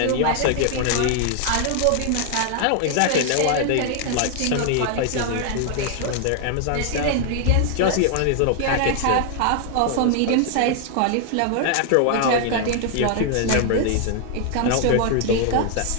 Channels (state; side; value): different; both; correlation 0.00